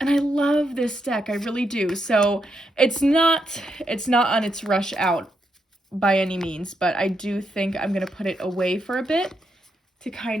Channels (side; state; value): both; normal; correlation 0.81